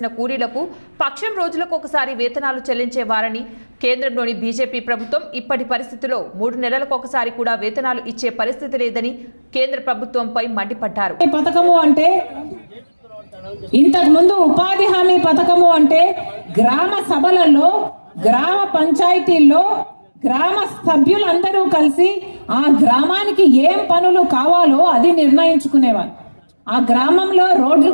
కూలీలకు పక్షం రోజులకు ఒకసారి వేతనాలు చెల్లించేవారని, కేంద్రంలోని బీజేపీ ప్రభుత్వం ఇప్పటి పరిస్థితిలో 3 నెలలకు ఒకసారి కూడా వేతనాలు ఇచ్చే పరిస్థితి లేదని కేంద్ర ప్రభుత్వంపై మండిపడ్డారు. ఇంతకు ముందు ఉపాధి హామీ పథకము అంటే గ్రామ సభలలో, గ్రామ పంచాయతీల్లో గ్రామ సభ్యులందరూ కలిసి ఆ గ్రామానికి ఏం పనులు కావాలో అది నిర్ణయించుకునేవారు. ఆ గ్రామంలో రోడ్లు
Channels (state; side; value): inverted; both; correlation -1.00